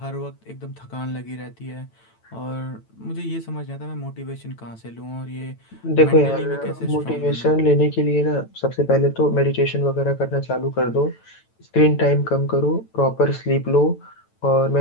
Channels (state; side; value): late; right; 9.0 ms